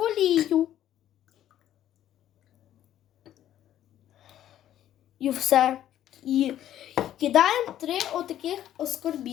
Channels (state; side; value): quieter; right; 11.8 dB